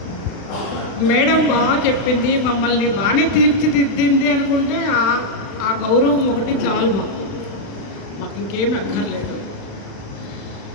మేడం బాగా చెప్పింది, మమ్మల్ని బాగానే తీర్చిదిద్దింది అనుకుంటే ఆ గౌరవం ఒకటి చాలు. మాకు ఇంకేం అక్కర్లేదు.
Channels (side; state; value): right; late; 36 ms